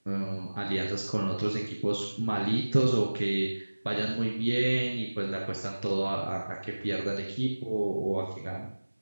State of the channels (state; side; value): inverted; both; correlation -1.00